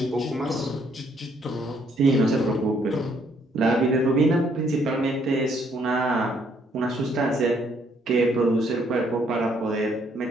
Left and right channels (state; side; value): normal; both; correlation 0.68